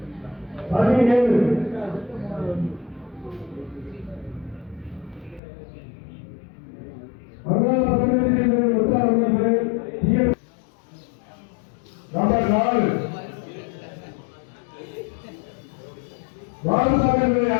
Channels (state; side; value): drops out; right; at 5.4 s